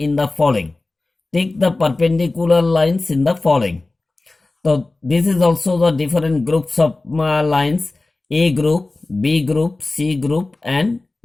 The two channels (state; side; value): quieter; right; 3.2 dB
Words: the following. Take the perpendicular lines in the following. So this is also the different groups of lines: A group, B group, C group and